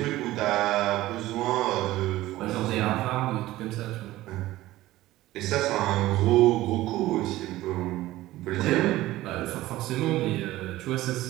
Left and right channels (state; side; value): quieter; left; 16.4 dB